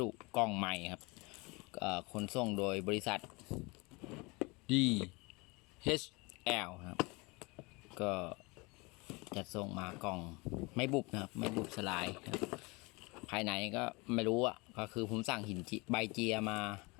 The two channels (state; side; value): quieter; right; 26.4 dB